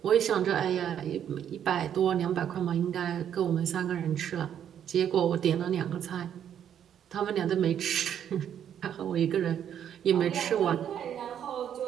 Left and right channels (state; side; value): quieter; left; 9.4 dB